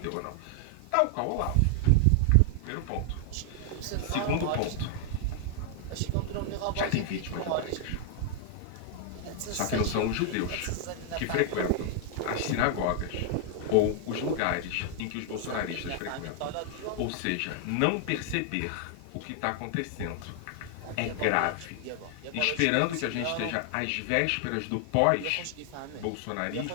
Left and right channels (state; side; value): different; both; correlation 0.00